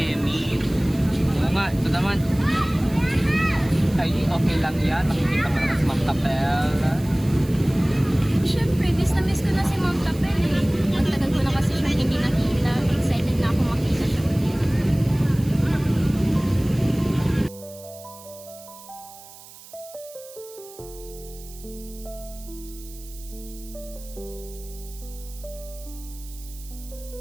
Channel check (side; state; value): right; noise; hiss, 19 dB below the sound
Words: Oo nga, ito naman. Ay, okay lang yan. Makikita pa naman si Ma'am Tapel. Siyempre, miss ko na si Ma'am Tapel eh. Ang tagal ko na kasi siyang hindi nakita. Excited na ako makita siya ulit.